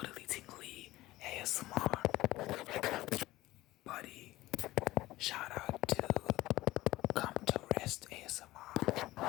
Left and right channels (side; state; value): right; quieter; 17.5 dB